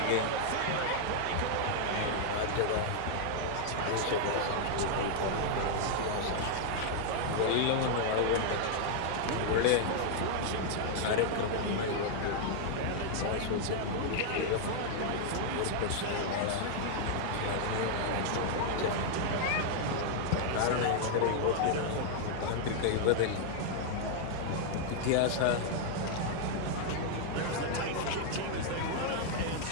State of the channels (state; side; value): different; both; correlation 0.00